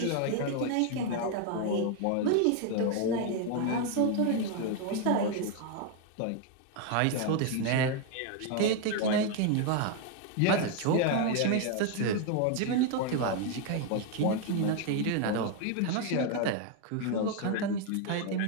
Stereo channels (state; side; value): different; both; correlation 0.01